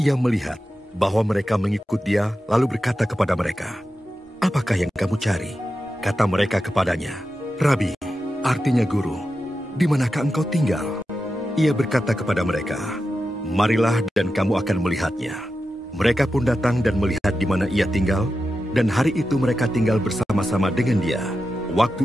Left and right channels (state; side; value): normal; both; correlation 0.91